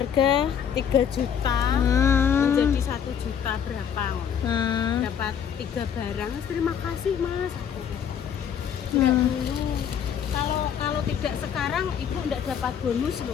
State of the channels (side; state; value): right; quieter; 8.3 dB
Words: 3 juta menjadi 1 juta berapa? Dapat 3 barang. Terima kasih Mas. Enggak dulu. Kalau tidak sekarang ibu enggak dapat bonus